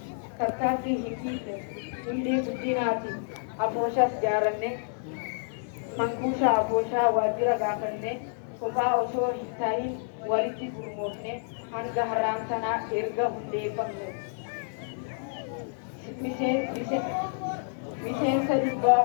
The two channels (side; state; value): right; silent; digital silence